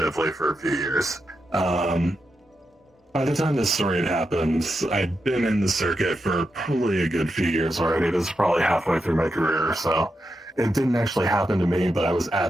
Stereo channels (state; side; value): normal; both; correlation 0.87